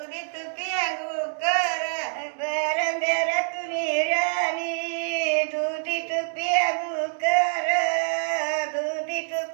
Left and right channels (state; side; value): silent; left; digital silence